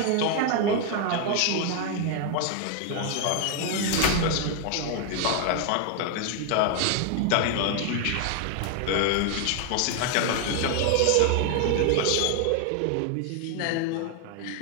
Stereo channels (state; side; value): different; both; correlation 0.01